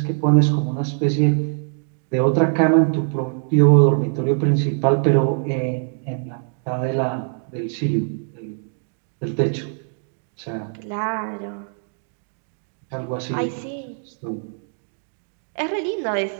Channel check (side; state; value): left; silent; digital silence